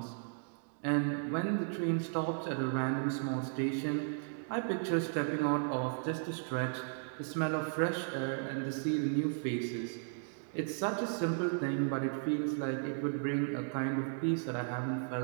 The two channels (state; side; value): silent; left; digital silence